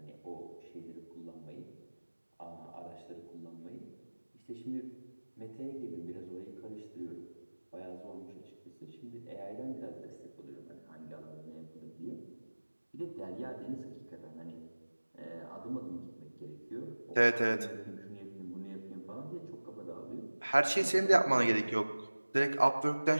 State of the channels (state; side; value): inverted; both; correlation -1.00